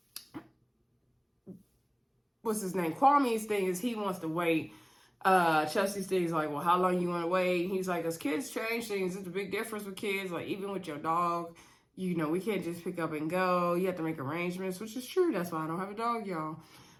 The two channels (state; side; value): identical; both; correlation 1.00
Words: what's his name? Kwame's thing is he wants to wait. Chelsea's thing is like, well, how long you want to wait? He's like, as kids change things, it's a big difference with kids. Like even with your dog, you know, we can't just pick up and go. You have to make arrangements, which is true. That's why I don't have a dog, y'all.